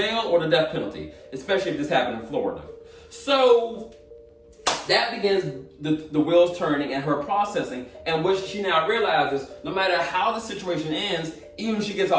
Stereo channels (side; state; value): both; identical; correlation 1.00